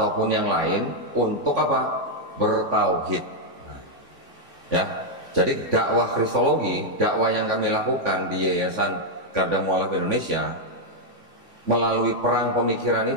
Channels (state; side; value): late; left; 3.5 ms